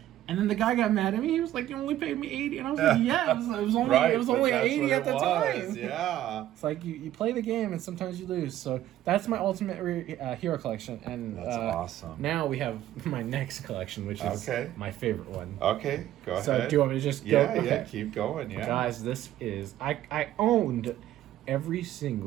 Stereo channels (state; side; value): quieter; left; 13.1 dB